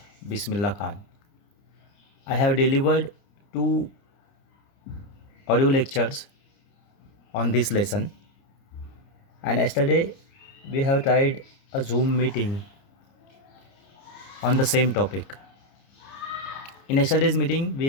Bismillah Khan. I have delivered 2 audio lectures on this lesson, and yesterday we have tried a Zoom meeting on the same topic. In yesterday's meeting we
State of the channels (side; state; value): right; late; 30 ms